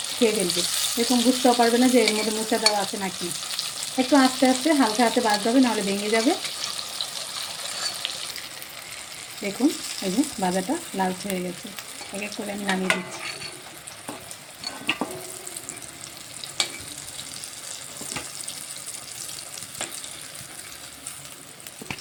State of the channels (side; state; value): both; identical; correlation 1.00